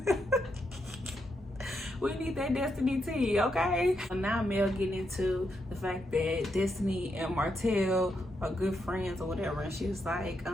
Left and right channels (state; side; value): normal; both; correlation 0.81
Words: We need that Destiny tea, okay? So now Mel getting into the fact that Destiny and Martell are good friends or whatever. And she was like,